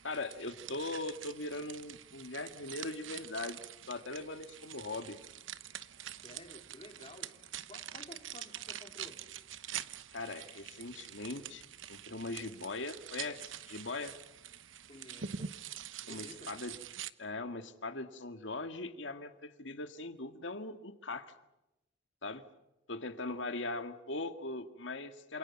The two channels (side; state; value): both; normal; correlation -0.08